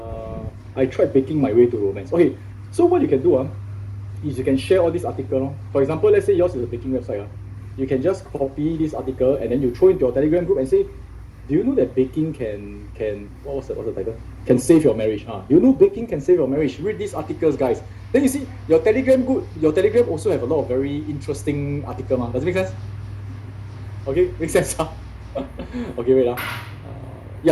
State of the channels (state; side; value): identical; both; correlation 1.00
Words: I tried baking my way to romance. Okay, so what you can do is you can share all these articles. For example, let's say yours is a baking website. You can just copy this article and then you throw into your Telegram group and say, do you know that baking can what's the title? Can save your marriage? You know baking can save your marriage. Read these articles, guys. Then you see your Telegram also have a lot of very interesting articles. Does it make sense? Okay, makes sense. Okay, wait.